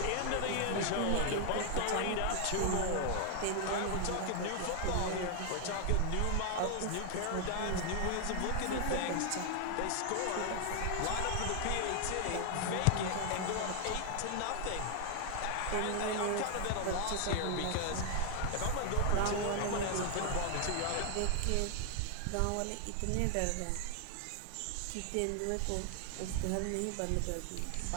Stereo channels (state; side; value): different; both; correlation 0.00